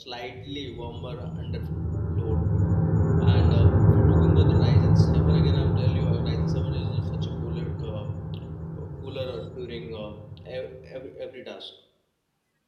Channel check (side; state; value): both; identical; correlation 1.00